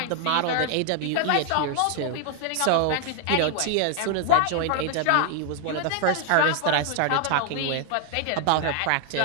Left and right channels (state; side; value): different; both; correlation 0.01